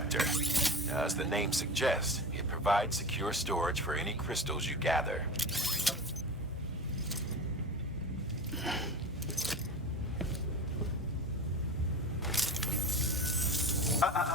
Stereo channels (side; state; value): both; normal; correlation 0.30